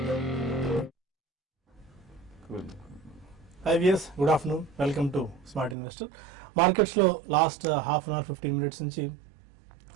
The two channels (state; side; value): drops out; left; at 5.8 s